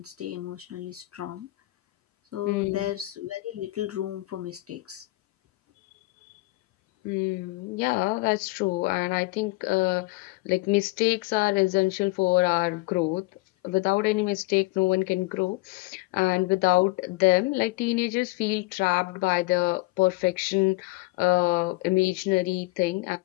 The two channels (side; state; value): right; quieter; 22.1 dB